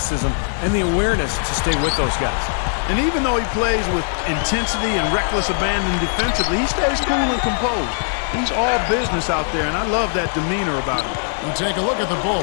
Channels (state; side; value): silent; right; digital silence